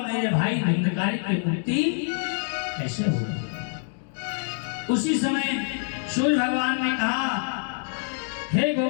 मेरे भाई धुंधकारी की मुक्ति कैसे होगी? उसी समय सूर्य भगवान ने कहा, हे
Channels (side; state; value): right; silent; digital silence